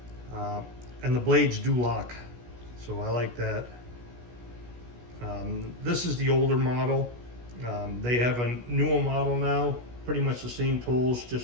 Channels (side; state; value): left; late; 16 ms